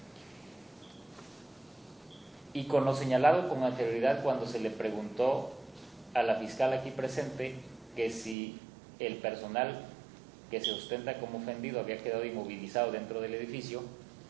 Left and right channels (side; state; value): left; drops out; at 8.3 s